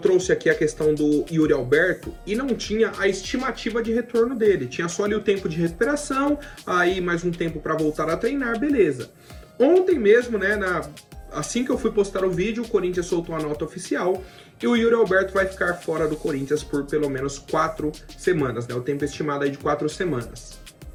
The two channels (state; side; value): identical; both; correlation 1.00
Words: aqui a questão do Yuri Alberto e não tinha a estimativa de retorno dele. Tinha só ali o tempo de recuperação, aí mais um tempo para voltar a treinar, beleza. Ontem mesmo, assim que eu fui postar o vídeo, o Corinthians soltou a nota oficial e o Yuri Alberto vai ficar fora do Corinthians por pelo menos 4 semanas, o tempo estimado aí de 4 semanas.